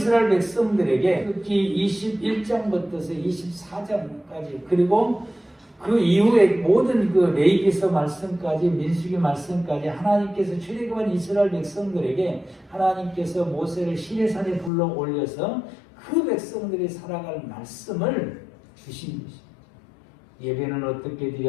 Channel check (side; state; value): right; drops out; at 14.7 s